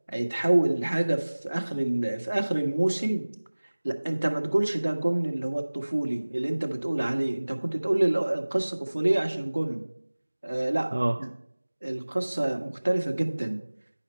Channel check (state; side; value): inverted; both; correlation -1.00